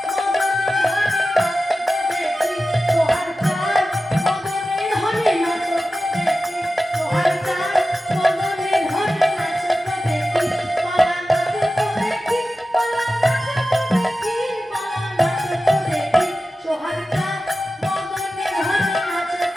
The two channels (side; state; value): both; normal; correlation 0.93